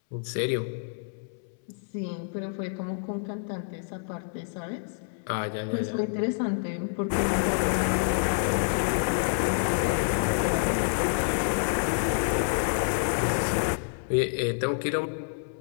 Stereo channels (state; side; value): silent; right; 59 dB below the other